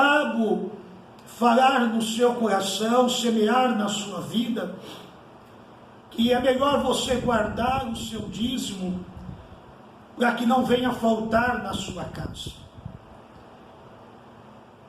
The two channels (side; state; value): both; identical; correlation 1.00